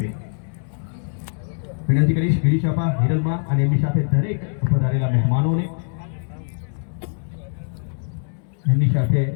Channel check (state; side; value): silent; right; digital silence